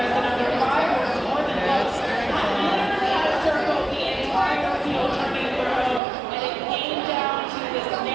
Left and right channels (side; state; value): left; drops out; at 6.0 s